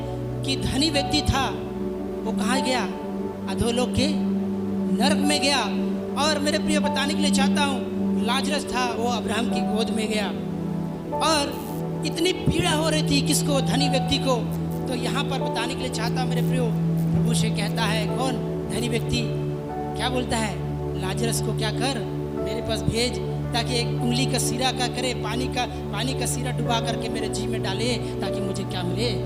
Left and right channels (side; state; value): both; identical; correlation 1.00